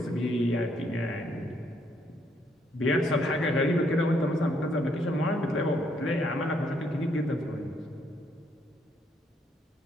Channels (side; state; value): both; normal; correlation 0.71